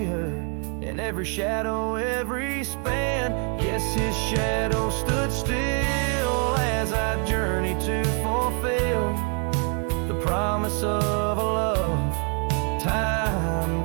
her in every shadow, every span. Yes, his shadow stood still as I journeyed to fulfill the promise of a love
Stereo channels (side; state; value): left; quieter; 39.0 dB